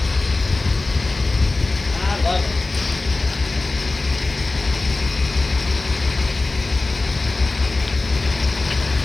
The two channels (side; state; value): right; quieter; 3.3 dB